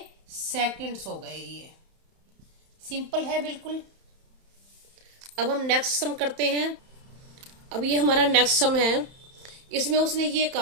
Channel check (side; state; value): left; late; 31 ms